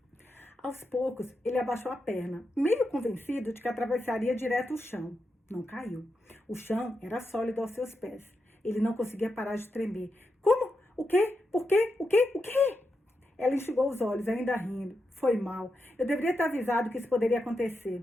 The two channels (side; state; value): both; normal; correlation 0.86